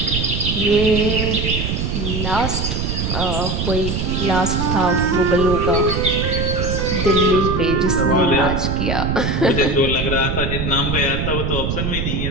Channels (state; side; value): noise; right; rumble, 1 dB below the sound